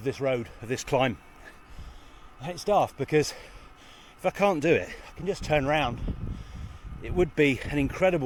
road, of this climb. It's daft because if I can't do it, I can just turn around. It would be an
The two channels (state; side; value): identical; both; correlation 1.00